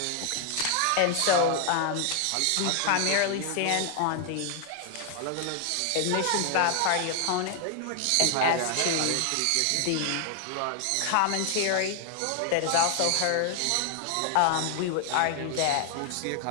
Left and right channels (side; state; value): both; different; correlation 0.00